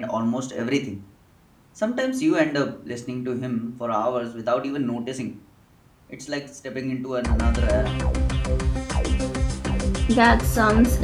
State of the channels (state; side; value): identical; both; correlation 1.00